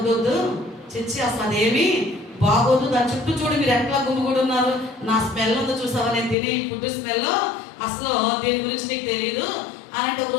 చిచ్చి అసలు అదేమి బాగోదు, దాని చుట్టూ చూడు మీరు ఎట్లా గుమ్మిగూడు ఉన్నారు, నా స్మెల్ ఉందో చూసావా, నేను తినే ఈ ఫుడ్ స్మెల్, అసలు దీని గురించి నీకు తెలియదు అని అంటే ఒక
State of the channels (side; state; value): right; drops out; at 6.4 s